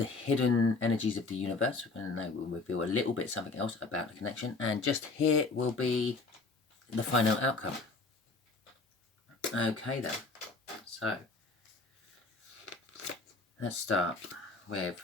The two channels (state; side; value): quieter; right; 3.7 dB